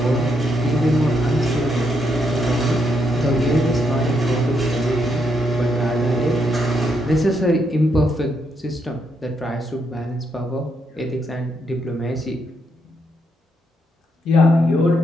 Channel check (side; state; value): both; normal; correlation 0.78